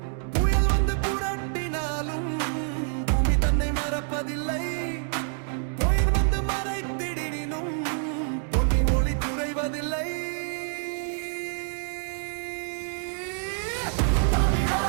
புயல் வந்து புரட்டினாலும் பூமி தன்னை மறப்பதில்லை, புயல் வந்து மறைத்திடினும் பொன்னின் ஒளி குறைவதில்லை.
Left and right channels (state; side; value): silent; left; 60 dB below the other